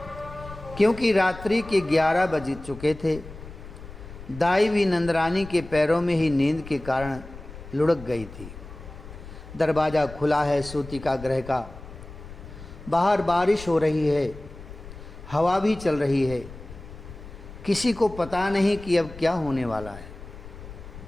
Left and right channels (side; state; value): left; noise; rumble, 15 dB below the sound